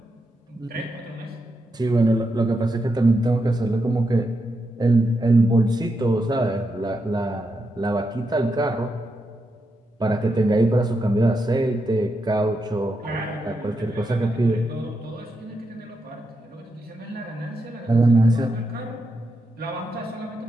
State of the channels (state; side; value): normal; both; correlation 0.84